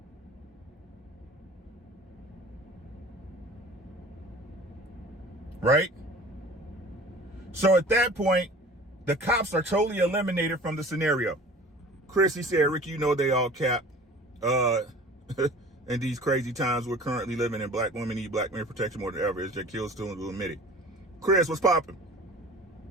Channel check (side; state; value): both; normal; correlation 0.43